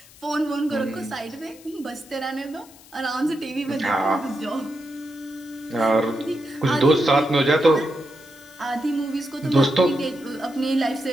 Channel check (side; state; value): left; noise; hiss, 23 dB below the sound